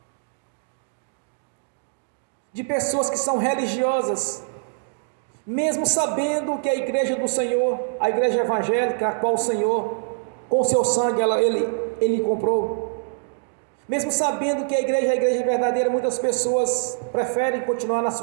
de pessoas que são religiosas, mesmo sabendo que a igreja do Senhor, a igreja evangélica, a qual o Senhor, com seu sangue, ele comprou, mesmo sabendo que a igreja verdadeira, muitas pessoas preferem continuar nas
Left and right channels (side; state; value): left; silent; digital silence